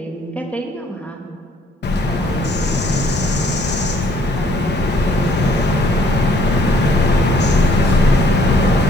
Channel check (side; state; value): both; normal; correlation 0.63